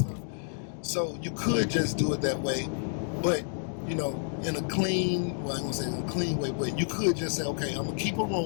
So you could just do it that way, but in a clean, well, I ain't gonna say in a clean way, but you could just say, okay, I'm gonna keep a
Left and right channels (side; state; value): right; silent; digital silence